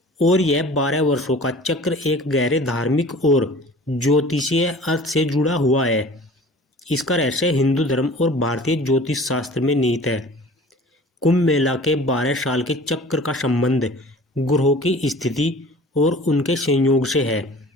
और यह 12 वर्षों का चक्र एक गहरे धार्मिक और ज्योतिषीय अर्थ से जुड़ा हुआ है। इसका रहस्य हिंदू धर्म और भारतीय ज्योतिष शास्त्र में निहित है। कुंभ मेला के 12 साल के चक्र का संबंध ग्रहों की स्थिति और उनके संयोग से है।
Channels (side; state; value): both; normal; correlation 0.44